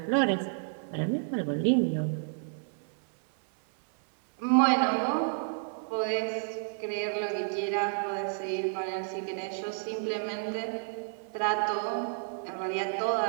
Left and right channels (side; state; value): left; silent; 58 dB below the other